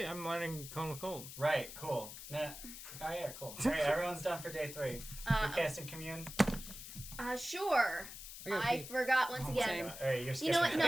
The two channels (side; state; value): left; noise; hiss, 11 dB below the sound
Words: I'm learning Cone of Cold. Right, cool. Nah. Oh yeah, cool. Alright, everyone's done for day 3. You're casting commune. Sure. I gotta I pee. forgot once Oh, again. same. Alright, you're You know what? skipping